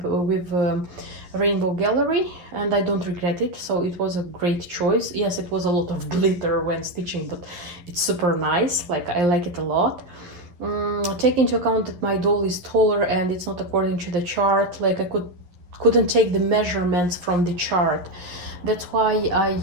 Rainbow Gallery, and I don't regret it. So it was a great choice. Yes, it was a lot of glitter when stitching, but it's super nice. Like, I like it a lot. Take into account that my doll is taller and it's not according to the chart. Like, I couldn't take the measurements from the chart. That's why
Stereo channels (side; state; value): left; late; 11 ms